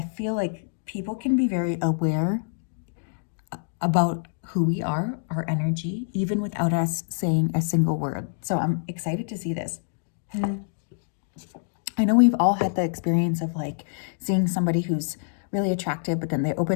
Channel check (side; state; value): right; silent; digital silence